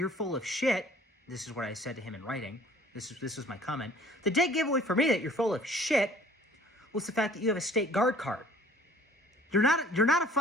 full of shit, this is what I said to him in writing, this was my comment. The dead giveaway for me that you're full of shit was the fact that you have a state guard card. You're not a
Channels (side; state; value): both; normal; correlation 0.53